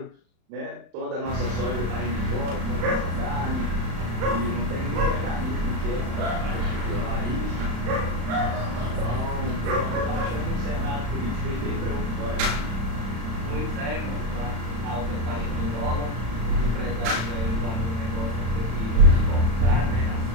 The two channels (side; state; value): left; late; 36 ms